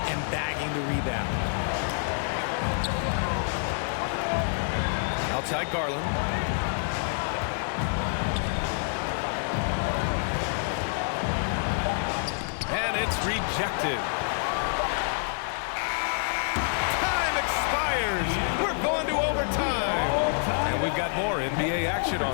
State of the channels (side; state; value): right; silent; 60 dB below the other